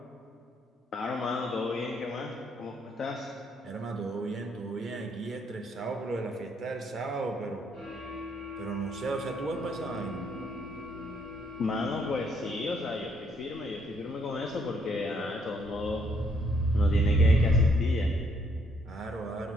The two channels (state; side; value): normal; both; correlation 0.70